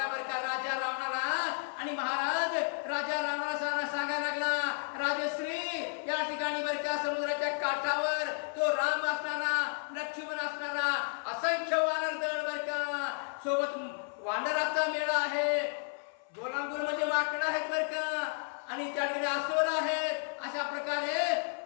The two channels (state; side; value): silent; right; 56 dB below the other